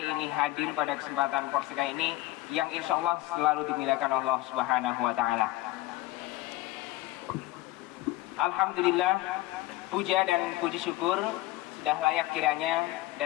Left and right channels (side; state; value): right; quieter; 17.7 dB